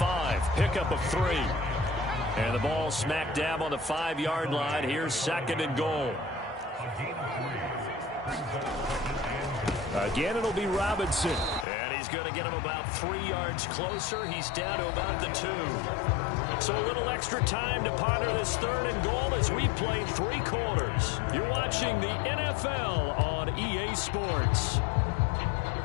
Pickup of 3. And the ball smack dab on the 5-yard line. Here's 2nd and goal. Again, it'll be Robinson. And he's going to get him about 3 yards closer. He's down to about the 2. So a little extra time to ponder this 3rd and goal as we play 3 quarters. You're watching the NFL on EA Sports.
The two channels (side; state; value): right; drops out; at 11.7 s